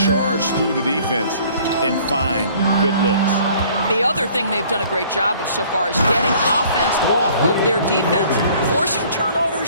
through the defense and find good looks. The other thing they've done a great job of so far is getting offense off of their defense, forcing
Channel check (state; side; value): inverted; both; correlation -0.55